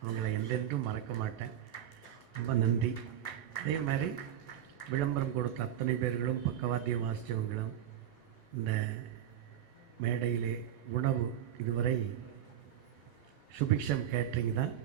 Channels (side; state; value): left; quieter; 10.4 dB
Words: அவங்களை எல்லோருக்கும் மறக்க மாட்டேன். ரொம்ப நன்றி. அதே மாதிரி விளம்பரம் கொடுத்த அத்தனை பேர்களும், பக்கவாத்தியம் வாசித்தவங்களும், இந்த மேடையிலே உணவு இதுவரை சுபிக்ஷம் கேட்ரிங் தான்